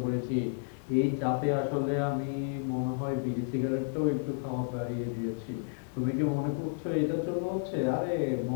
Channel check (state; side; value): silent; right; digital silence